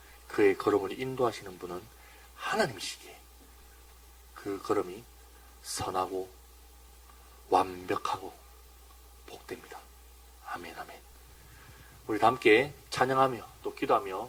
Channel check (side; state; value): both; identical; correlation 1.00